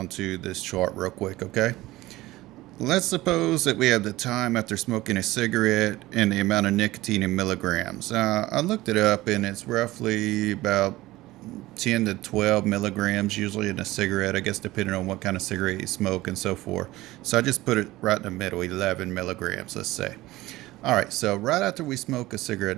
to this chart real quick, okay? Let's suppose that we have the time after smoking a cigarette and the amount of nicotine in milligrams. I looked it up and it's roughly about 10 to 12 milligrams usually in a cigarette, I guess depending on what kind of cigarette you smoke and so forth. So I just put it right in the middle, 11 milligrams, let's say. Alright, so right after we smoke a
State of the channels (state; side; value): quieter; left; 18.0 dB